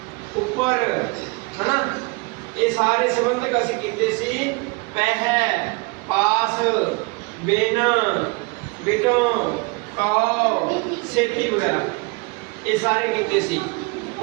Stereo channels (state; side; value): quieter; left; 28.0 dB